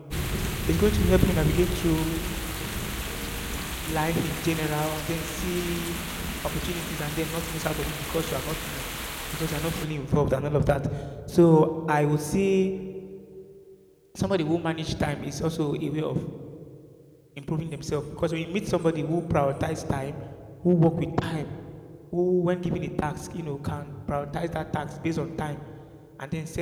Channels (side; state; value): both; identical; correlation 1.00